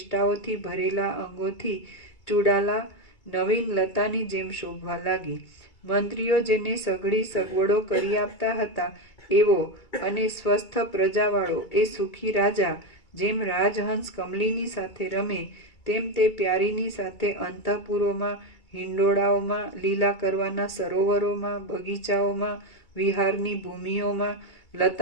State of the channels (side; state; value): right; late; 2.3 ms